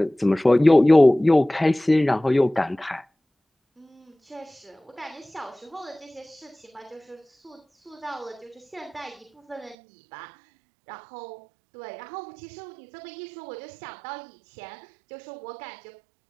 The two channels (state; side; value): drops out; left; at 9.8 s